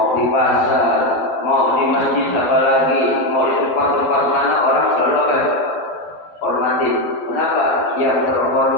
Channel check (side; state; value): right; late; 12 ms